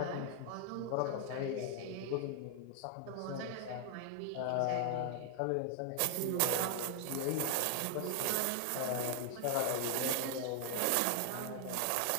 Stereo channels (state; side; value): different; both; correlation 0.00